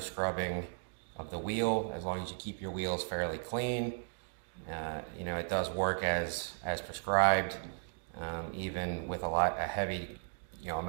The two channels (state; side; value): silent; left; digital silence